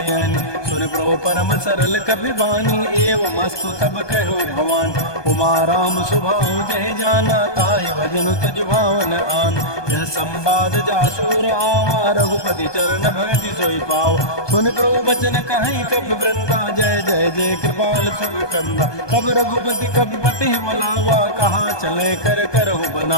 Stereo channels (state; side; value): late; right; 1.2 ms